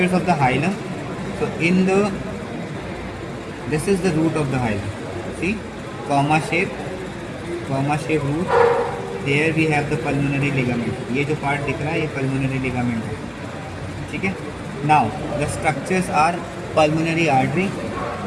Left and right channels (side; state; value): both; identical; correlation 1.00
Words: of the hilum. So in the, this is the root of the hilum. See, comma shape root. There we have the pulmonary ligament. ये जो part दिख रहा है ये pulmonary ligament है. ठीक है. Now the structures are pulmonary artery,